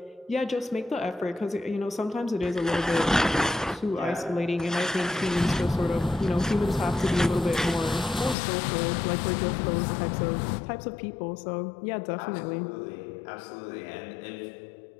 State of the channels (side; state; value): right; drops out; at 8.3 s